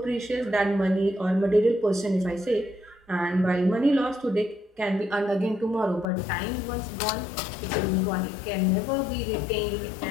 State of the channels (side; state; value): right; drops out; at 6.1 s